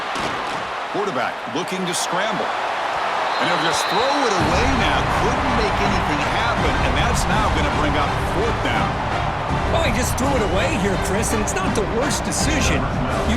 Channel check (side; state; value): both; identical; correlation 1.00